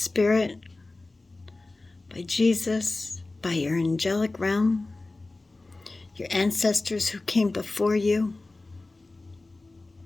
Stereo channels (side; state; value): right; quieter; 3.2 dB